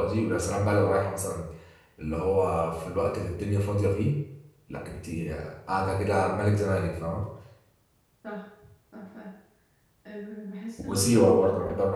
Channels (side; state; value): both; identical; correlation 1.00